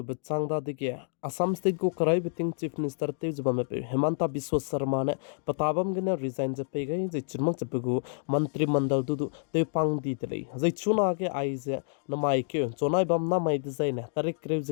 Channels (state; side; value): silent; right; digital silence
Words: changda dige Assam State ko karai biting Chief Minister te jubame pe Hemanta Biswa Sharma ne patabam gane resign je pe gai je chirmak je pegu mantri mandal du te pang di tele je chuna ke ai je namai ke chonai bam na mai design ne tarik krev